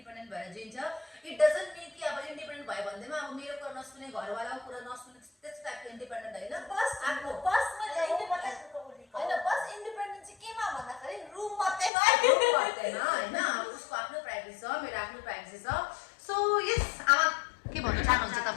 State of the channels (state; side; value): drops out; right; at 11.9 s